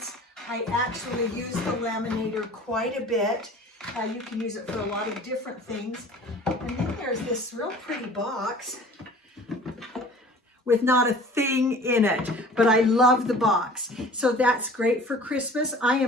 I actually use the laminator quite a bit. You can use it for a lot of different things. And then there's this real pretty box with not a thing in it, but I love the box. So that's great for Christmas. I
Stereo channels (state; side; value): normal; both; correlation 0.46